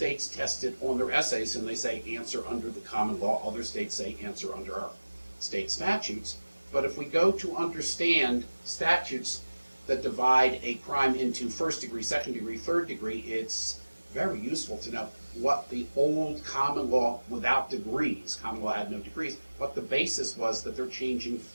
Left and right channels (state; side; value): inverted; both; correlation -1.00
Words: test it on their essays and they say answer under the common law. Other states say answer under our state statutes. But if we go to understand statutes that divide a crime into first degree, second degree, third degree, it's very useful to know what the old common law without degrees, common law had no degrees, what the basis was that they're changing